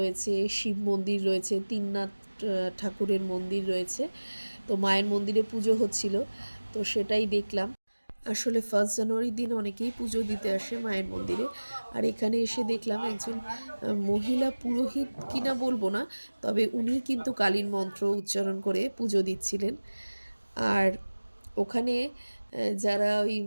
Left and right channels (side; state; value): both; inverted; correlation -1.00